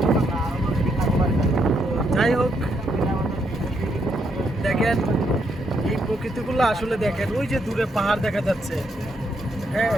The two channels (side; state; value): both; normal; correlation 0.77